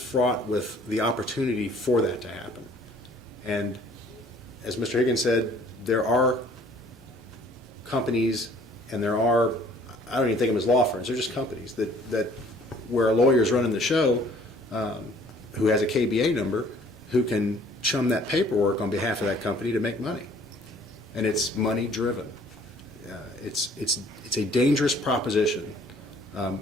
with the opportunity for that to happen. And as Mr. Higgins said, there are companies, and there are, I don't even think of them as law firms, they're just companies that where a lawyer is running the show who has a KBA number, who can chum that paperwork on behalf of that company to make money. And it's money driven. It's a dangerous proposition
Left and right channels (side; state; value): both; normal; correlation 0.56